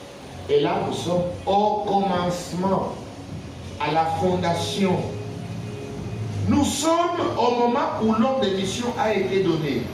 Et là, nous sommes au commencement, à la fondation. Nous sommes au moment où l'ordre de mission a été donné.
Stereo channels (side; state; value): both; identical; correlation 1.00